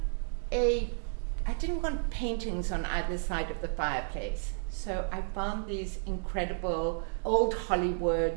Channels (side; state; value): left; silent; digital silence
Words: paintings on either side of the fireplace, so I found these incredible old